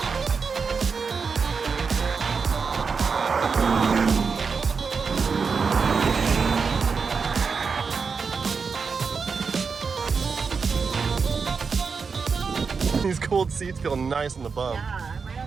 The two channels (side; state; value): left; quieter; 5.3 dB